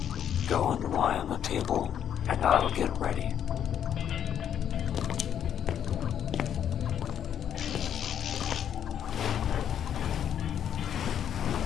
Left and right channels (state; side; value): quieter; right; 9.3 dB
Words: Go and lie on the table, and I'll get ready.